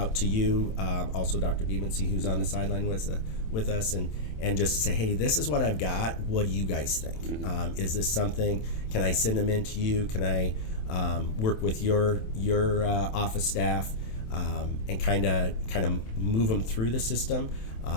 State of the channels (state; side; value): late; right; 27 ms